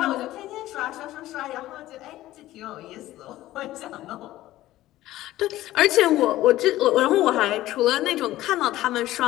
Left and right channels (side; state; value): right; quieter; 15.4 dB